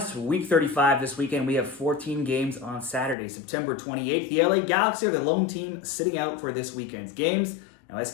Week 35 this weekend. We have 14 games on Saturday, September 28th. The LA Galaxy are the lone team sitting out for this weekend's games. Now,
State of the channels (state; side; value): drops out; right; at 3.2 s